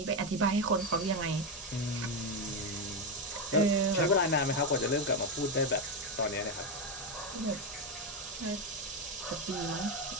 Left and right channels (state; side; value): normal; both; correlation 0.08